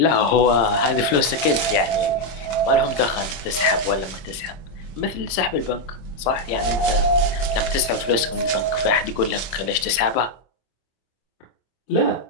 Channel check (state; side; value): late; right; 26 ms